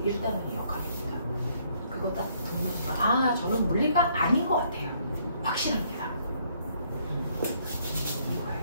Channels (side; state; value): both; inverted; correlation -0.67